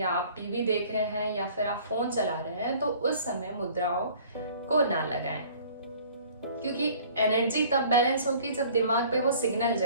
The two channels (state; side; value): inverted; both; correlation -0.51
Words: आप टीवी देख रहे हैं या फिर आप फोन चला रहे हैं तो उस समय मुद्राओं को ना लगाएं, क्योंकि एनर्जी तब बैलेंस होगी जब दिमाग पे वो सिग्नल